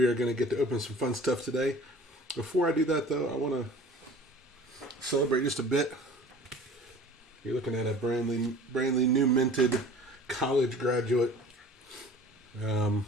are going to get to open some fun stuff today. Before I do that, though, I want to celebrate just a bit. You're looking at a brandly new minted college graduate.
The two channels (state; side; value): normal; both; correlation 0.45